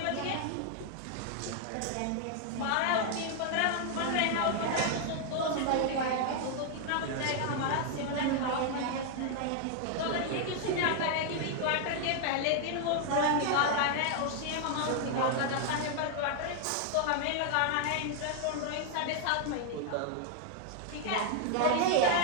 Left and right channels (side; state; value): both; different; correlation 0.00